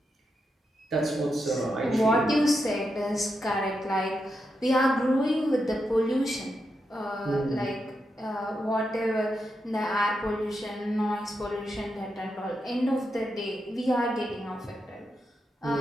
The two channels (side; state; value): both; normal; correlation 0.85